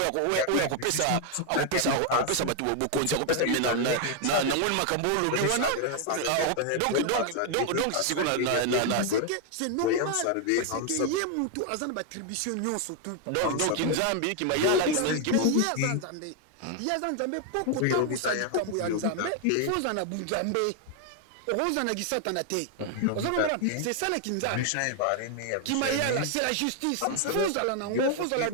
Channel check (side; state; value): both; different; correlation 0.00